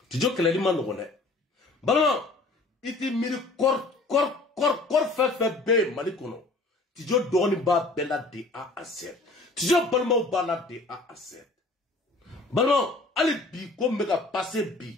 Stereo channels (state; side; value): quieter; right; 3.2 dB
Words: tijo kele li man ngone balma iti miri kor fe be mali kono tijo doni ba bela de A à Z tijo balma ba la de A à Z balma ali bi ko mega passer bi